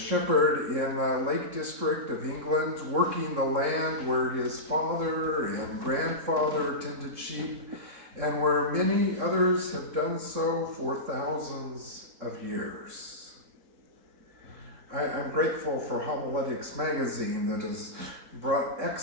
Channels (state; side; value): late; left; 3.7 ms